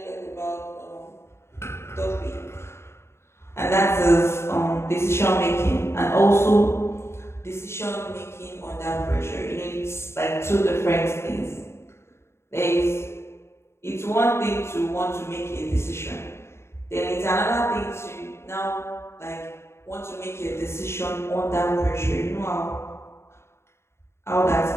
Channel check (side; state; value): right; late; 0.13 ms